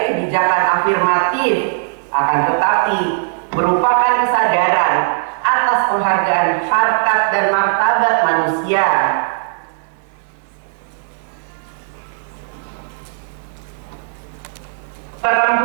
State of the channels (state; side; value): silent; left; digital silence